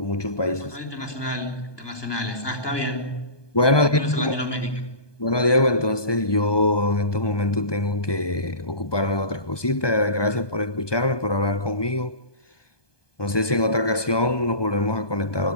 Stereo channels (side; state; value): right; late; 1.2 ms